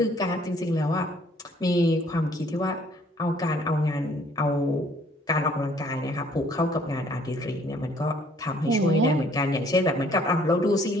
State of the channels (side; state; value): both; normal; correlation 0.60